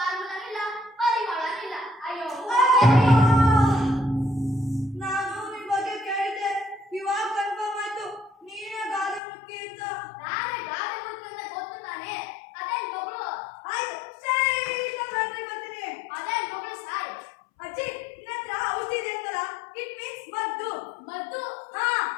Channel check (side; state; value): right; drops out; at 9.2 s